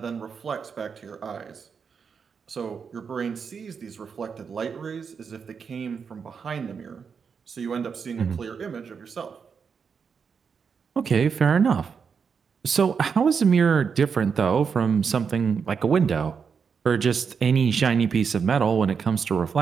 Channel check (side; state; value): left; quieter; 6.1 dB